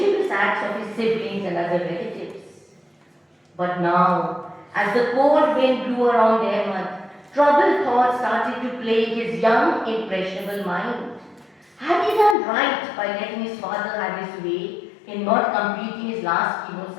acts of his siblings and other relatives. But now, as the cold wind blew around Ahmed, troubled thoughts started to plague his young, impressionable mind. Had he done right by letting his father have his way in not completing his last chemo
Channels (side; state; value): right; drops out; at 12.4 s